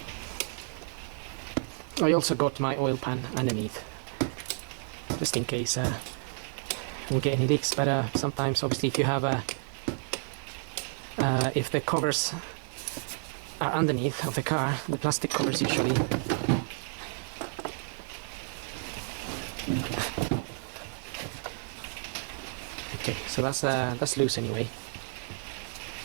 I also got my oil pan underneath, just in case we get any leaks, but sometimes obviously if you have if the covers are underneath of the car, the plastic covers usually okay, so that's loose anyway.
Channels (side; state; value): left; silent; 57 dB below the other